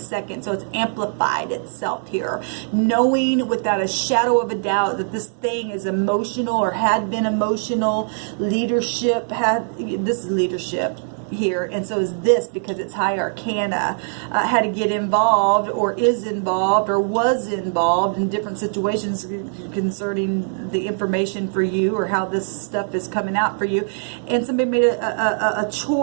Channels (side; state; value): left; silent; digital silence